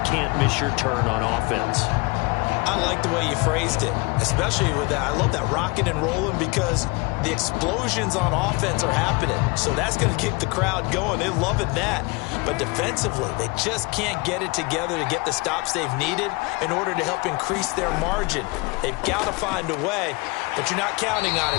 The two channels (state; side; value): quieter; right; 26.4 dB